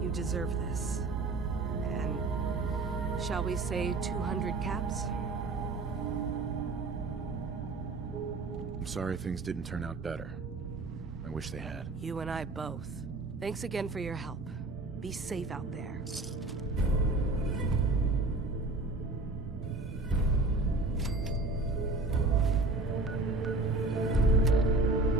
deserve this. And shall we say 200 caps? I'm sorry things didn't turn out better. I wish they had. You and I both. Thanks again for your help. Be safe out there.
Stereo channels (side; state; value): left; quieter; 3.3 dB